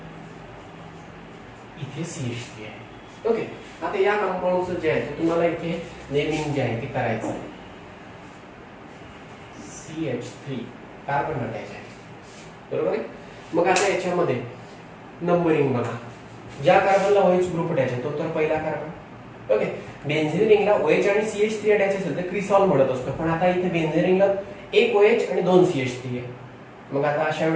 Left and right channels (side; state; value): both; identical; correlation 1.00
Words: इथे CH3 आहे. ओके, आता या कंपाऊंडचं जे आहे ते तुम्हाला इथे नेमिंग जे आहे ते करायचं आहे. CH3 कार्बन अटॅच आहे, बरोबर आहे. मग आता याच्यामध्ये नंबरिंग बघा. ज्या कार्बनला OH ग्रुप अटॅच आहे तो तर पहिला कार्बन. ओके, बेन्झीन रिंगला OH आणि CH3 अटॅच असेल तर क्रिसॉल म्हणत असतो, पण आता इथे बेन्झीन रिंगला एक OH आणि 2 CH3 आहे. मग आता अशा